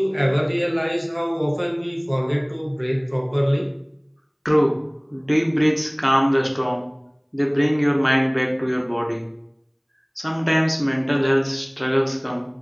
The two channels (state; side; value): identical; both; correlation 1.00